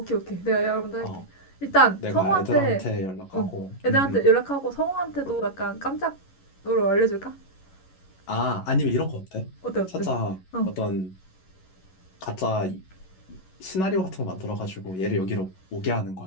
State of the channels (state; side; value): late; right; 11 ms